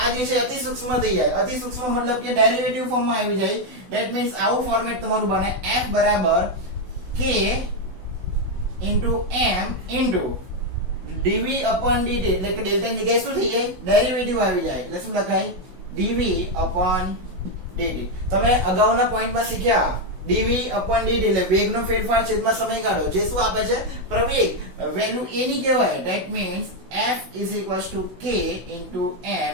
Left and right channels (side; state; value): left; late; 16 ms